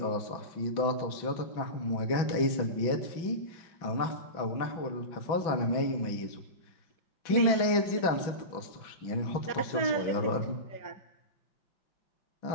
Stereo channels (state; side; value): late; right; 6.1 ms